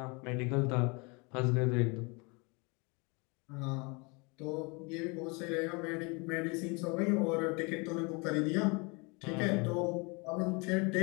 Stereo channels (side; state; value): right; quieter; 29.9 dB